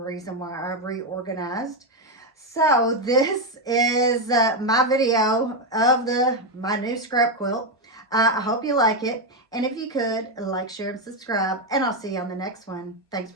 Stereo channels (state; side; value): normal; both; correlation 0.06